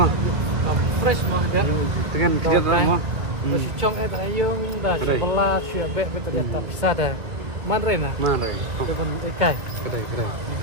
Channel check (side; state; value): left; late; 2.1 ms